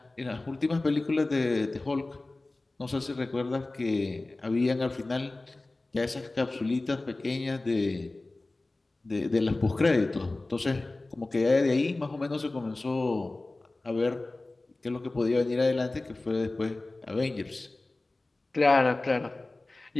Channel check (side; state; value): right; quieter; 3.0 dB